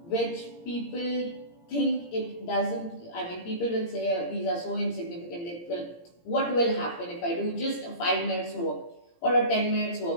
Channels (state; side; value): late; right; 17 ms